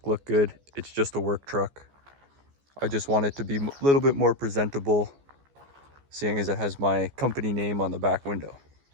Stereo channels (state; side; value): late; left; 14 ms